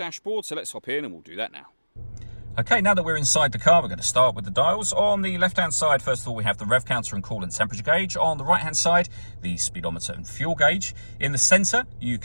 so let's hop in and we'll do that now. Okay, now that we're inside the car, we're going to start with the dials. On the left-hand side, first of all, we have the rev counter and coolant temperature gauge. On the right-hand side, the speedometer and fuel gauge. In the centre, you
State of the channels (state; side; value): inverted; both; correlation -1.00